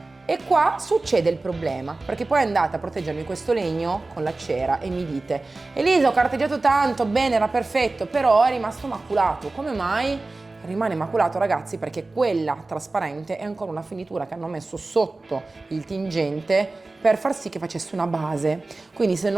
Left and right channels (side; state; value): left; quieter; 3.3 dB